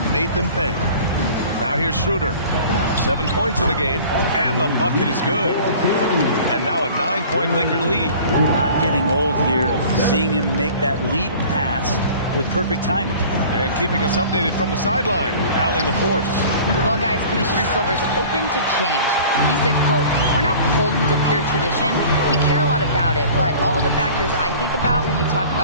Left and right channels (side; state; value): both; inverted; correlation -0.45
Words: made them pay. Now here's Schroeder. 7 points in the game, and the bucket is good. And now a 9-point Laker lead. Not getting old here. Seeing him make that lead pass with perfect timing. And keeping us updated from the sideline, Allie LaForce. Well, guys, Commissioner Silver's open to change. He said, quote, "We're not beholden to pure tradition. We care a lot about it, but all the factors I think about when we talk